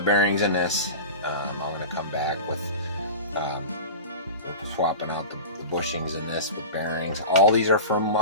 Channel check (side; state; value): both; inverted; correlation -0.31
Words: bearings in this. I'm going to come back with swapping out the bushings in this with bearings. All these are from